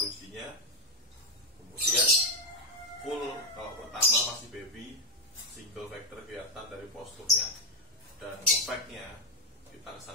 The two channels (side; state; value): both; normal; correlation 0.03